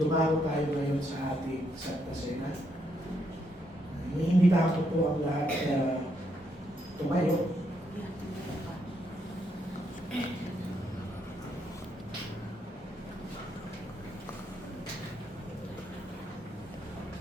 tayo ngayon sa ating Santa Cena. Iniimbitahan ko po ang lahat na tumayo.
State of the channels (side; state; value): both; normal; correlation 0.76